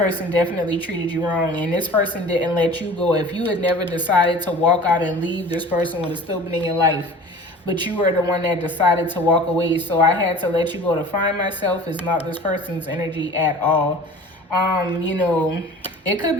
definitely treated you wrong, and this person didn't let you go. If you had never decided to walk out and leave, this person would have still been in your life. But you were the one that decided to walk away. So I had to let you go to find myself. It's not this person's energy at all. It could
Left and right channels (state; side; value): normal; both; correlation 0.42